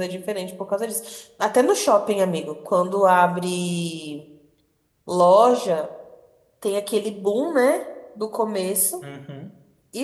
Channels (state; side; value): identical; both; correlation 1.00